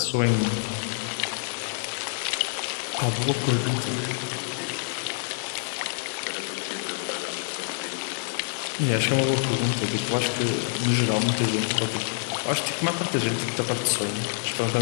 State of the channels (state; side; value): silent; right; digital silence